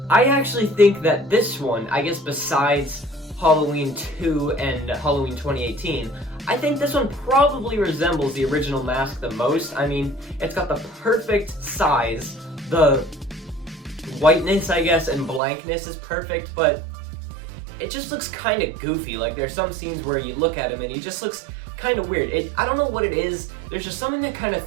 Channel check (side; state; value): left; drops out; at 15.4 s